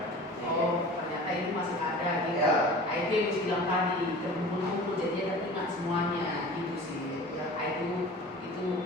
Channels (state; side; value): normal; both; correlation 0.39